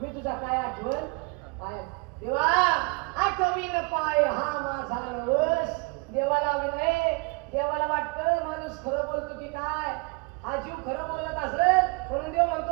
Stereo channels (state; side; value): quieter; left; 30.5 dB